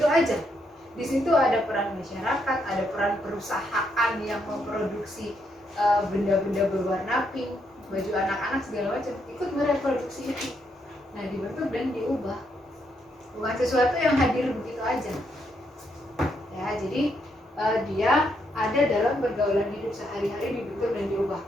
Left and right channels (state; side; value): normal; both; correlation 0.77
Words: aja. Di situ ada peran masyarakat, ada peran perusahaan yang memproduksi benda-benda berwarna pink, baju anak-anak segala macam, ikut mereproduksi itu. Nah, dibentuk dan diubah. Bukan sesuatu yang hadir begitu aja. Ya, jadi dia ada dalam pergaulan hidup sehari-hari, dibentuk dan diubah.